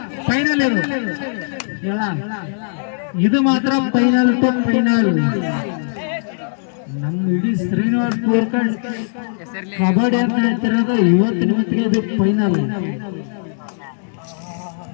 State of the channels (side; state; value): right; silent; digital silence